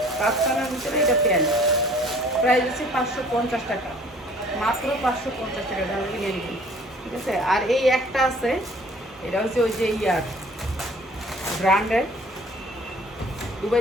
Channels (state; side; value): normal; both; correlation 0.53